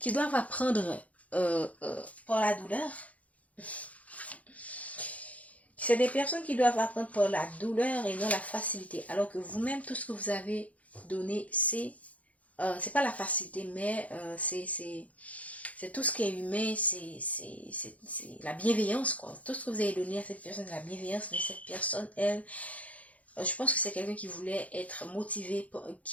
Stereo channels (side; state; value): right; late; 0.068 ms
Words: apprendre par la douleur. C'est des personnes qui doivent apprendre par la douleur et non la facilité. Alors que vous-même, tout ce que vous avez donné, c'est pas la facilité, mais c'est tout ce qui est humain, c'est la bienveillance, quoi. Tout ce que vous avez donné à cette personne, c'est la bienveillance, mais cette personne, elle, je pense que c'est quelqu'un qui voulait être motivé